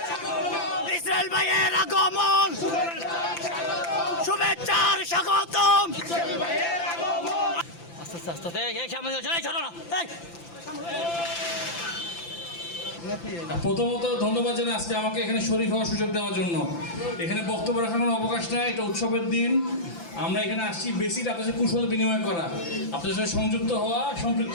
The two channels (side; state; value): right; late; 5.9 ms